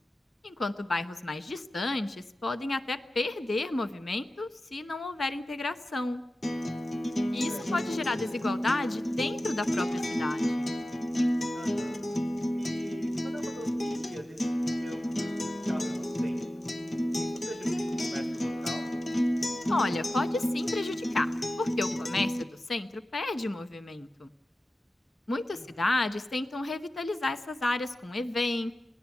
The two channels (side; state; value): both; normal; correlation 0.94